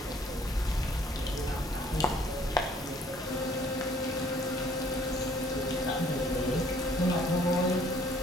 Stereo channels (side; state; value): both; normal; correlation 0.59